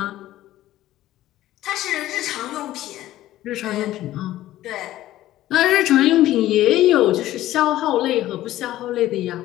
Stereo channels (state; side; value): quieter; right; 14.6 dB